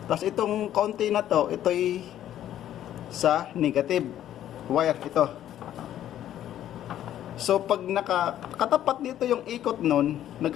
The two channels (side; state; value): right; quieter; 11.7 dB